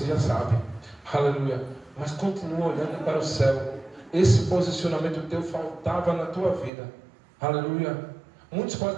já sabe. Aleluia. Mas continua olhando para o céu. Esse posicionamento teu faltava na tua vida. Aleluia. Muitos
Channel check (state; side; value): drops out; left; at 6.7 s